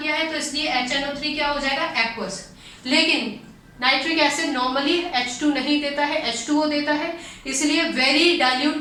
है तो इसलिए HNO3 क्या हो जाएगा? एक्वस। लेकिन नाइट्रिक एसिड नॉर्मली H2 नहीं देता है, H2O देता है, इसलिए वेरी डाइल्यूट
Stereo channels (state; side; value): identical; both; correlation 1.00